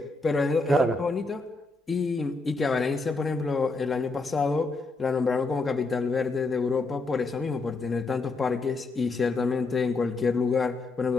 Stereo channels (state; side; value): quieter; right; 3.5 dB